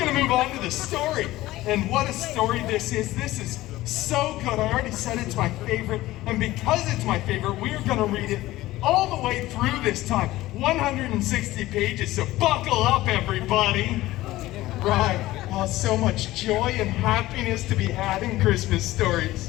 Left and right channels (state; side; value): quieter; right; 16.9 dB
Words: to move on to the story. And what a story this is. This is so good. I already said it's my favorite. And because it's my favorite, we're going to read it all the way through this time. 160 pages, so buckle up, everybody. Right. Oh, so much joy and happiness to be had in Christmas